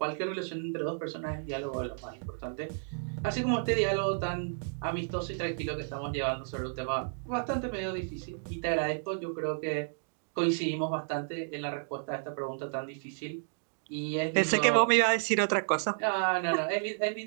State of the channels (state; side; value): silent; left; digital silence